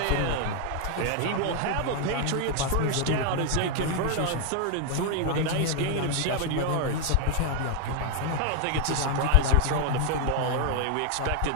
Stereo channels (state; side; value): different; both; correlation 0.00